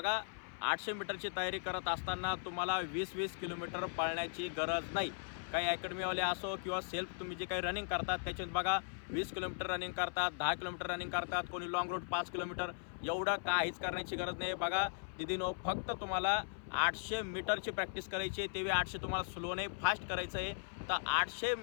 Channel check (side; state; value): right; silent; 52 dB below the other